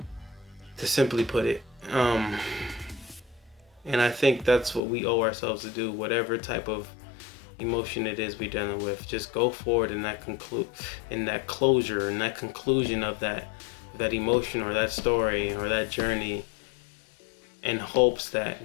to simply put it. And I think that's what we owe ourselves to do, whatever type of emotion it is we're dealing with. Just go forward in that closure, in that conclusion of that emotion or that story or that journey, in hopes that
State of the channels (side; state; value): right; drops out; at 4.8 s